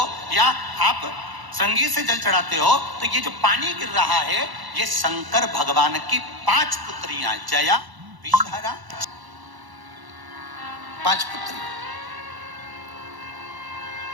या आप संगीत से जल चढ़ाते हो, तो ये जो पानी गिर रहा है, ये शंकर भगवान की 5 पुत्रियां, जया, विषहरा, 5 पुत्री।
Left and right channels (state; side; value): late; left; 1.0 ms